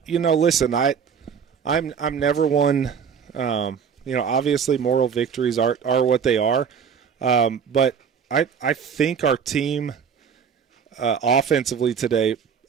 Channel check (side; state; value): left; quieter; 6.9 dB